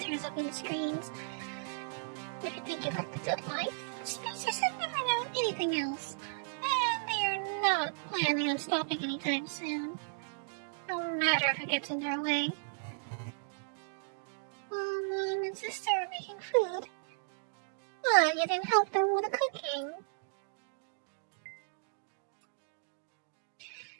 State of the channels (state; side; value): silent; left; digital silence